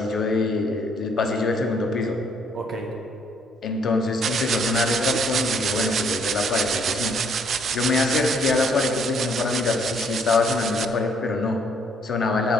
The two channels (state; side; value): normal; both; correlation 0.65